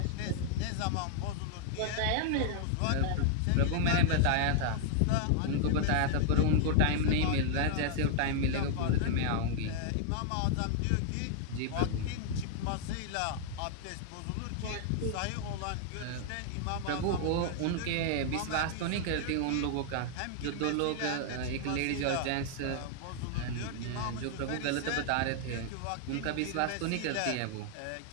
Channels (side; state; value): both; different; correlation 0.00